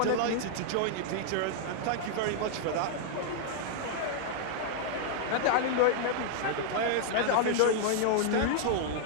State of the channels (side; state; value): both; different; correlation -0.01